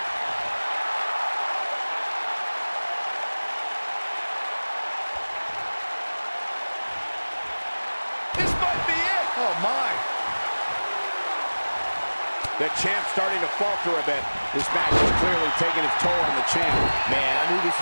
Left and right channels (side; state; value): both; inverted; correlation -1.00